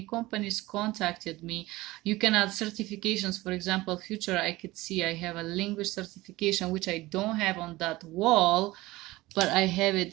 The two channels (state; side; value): quieter; left; 19.2 dB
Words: contacted me. You can add certifications. For example, future, I could see I have a language certification, which I don't have on that wall, but I have